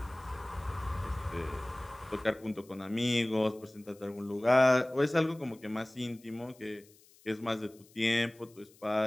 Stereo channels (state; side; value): noise; left; hiss, 27 dB below the sound